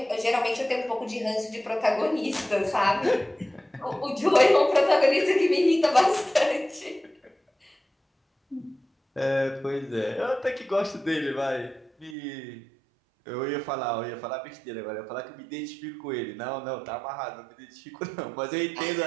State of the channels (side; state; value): left; drops out; at 12.2 s